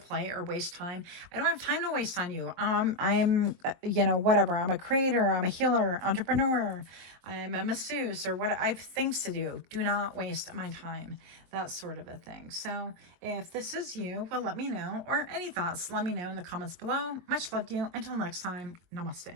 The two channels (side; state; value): left; late; 23 ms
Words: or waste time, I don't have time to waste on you. I'm, you know, whatever. I'm a creator. I'm a healer, entrepreneur. I'm a masseuse, or what. I have things to do. Do not waste my time. That sort of a thing. So if this is you, well, let me know. Or any thoughts, let me know in the comments below. Much love to you. Until next time,